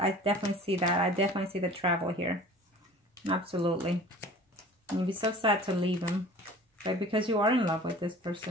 definitely see that. I definitely see the travel here. Absolutely. And you'd be so sad to leave him. Right? Because you are in love with this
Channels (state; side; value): normal; both; correlation 0.44